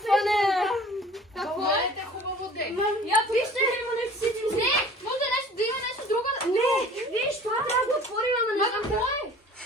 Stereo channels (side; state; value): both; normal; correlation 0.46